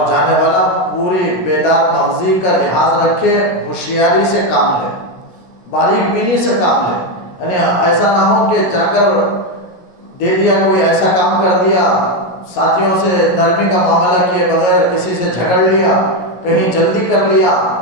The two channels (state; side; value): late; right; 17 ms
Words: جانے والا پوری بیدار مغزی کا لحاظ رکھے، ہوشیاری سے کام لے، باریک بینی سے کام لے، یعنی ایسا نہ ہو کہ جا کر دے دیا، کوئی ایسا کام کر دیا، ساتھیوں سے نرمی کا معاملہ کیے بغیر کسی سے جھگڑ لیا، کہیں جلدی کر لیا